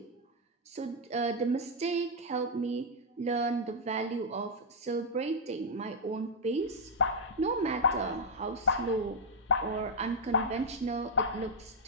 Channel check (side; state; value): both; normal; correlation -0.03